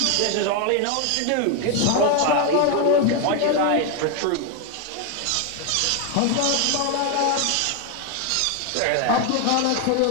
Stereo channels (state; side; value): different; both; correlation 0.01